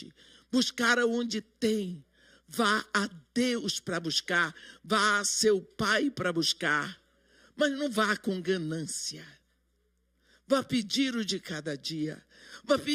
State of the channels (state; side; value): identical; both; correlation 1.00